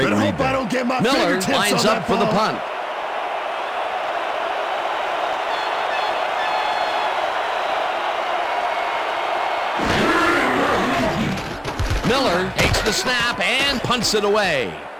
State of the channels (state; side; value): identical; both; correlation 1.00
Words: read there. Miller lines up for the punt. Miller takes the snap and punts it away.